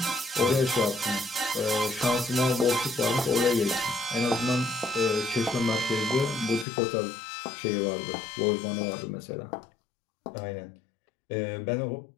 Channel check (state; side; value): drops out; right; at 6.7 s